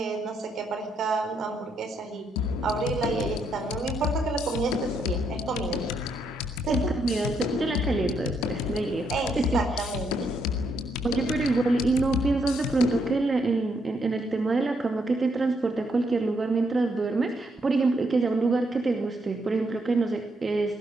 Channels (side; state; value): both; normal; correlation 0.76